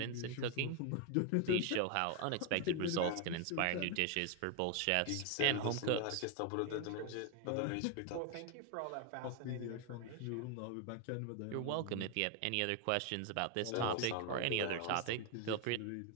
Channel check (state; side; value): different; both; correlation 0.01